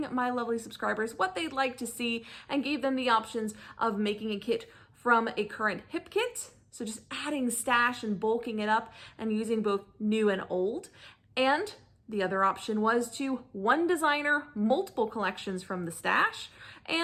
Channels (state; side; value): identical; both; correlation 1.00